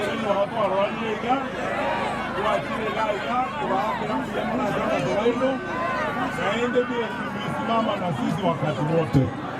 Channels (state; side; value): identical; both; correlation 1.00